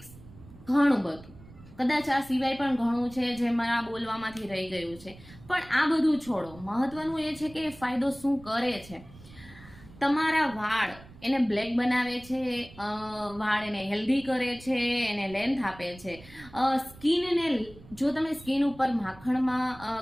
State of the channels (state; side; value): noise; right; rumble, 20 dB below the sound